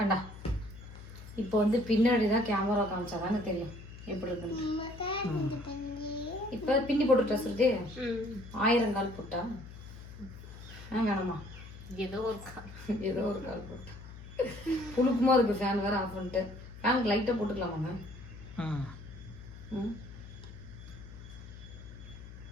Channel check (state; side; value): noise; left; hum, 15 dB below the sound